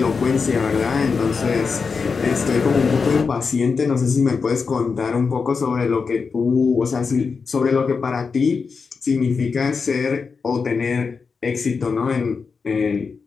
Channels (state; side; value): quieter; right; 5.1 dB